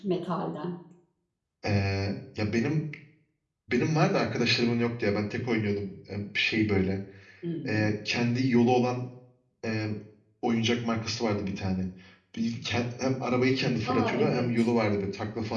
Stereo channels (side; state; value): both; identical; correlation 1.00